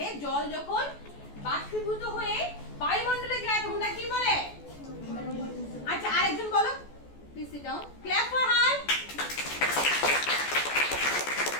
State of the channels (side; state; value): right; late; 14 ms